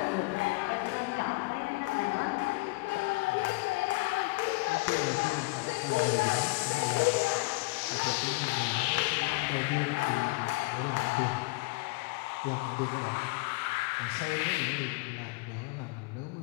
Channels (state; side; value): quieter; right; 25.3 dB